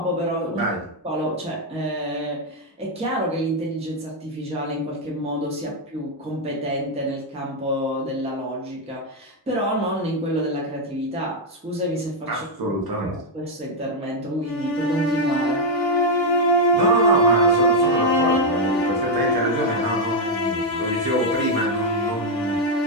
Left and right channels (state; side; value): normal; both; correlation 0.01